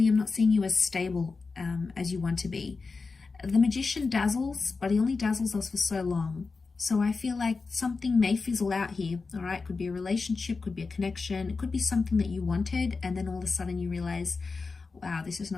I'm not seeing you as stable as you want to be. The Magician dazzles, but he only dazzles us for so long. So I feel like something may fizzle out here, all right? Could be a relationship, could be a connection. It could be something that you wanted, and then all of a sudden you realize, wow, this is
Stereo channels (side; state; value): right; quieter; 4.3 dB